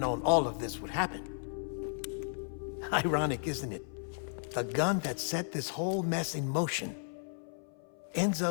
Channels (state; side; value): silent; right; 55 dB below the other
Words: all of this would happen. Ironic, isn't it? The gun that set this whole mess in motion ends